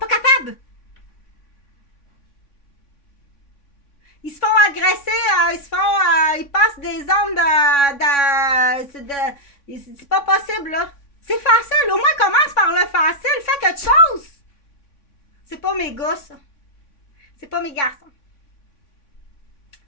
capable. Ils se font agresser, ils passent des zones c'est pas possible, là. C'est facile. Au moins, commence par le facile. Fais quelque chose. C'est pas mes gars, ça. C'est pas mes garçons.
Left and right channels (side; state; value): right; late; 3.6 ms